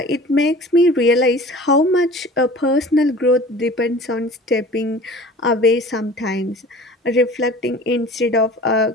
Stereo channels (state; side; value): normal; both; correlation 0.44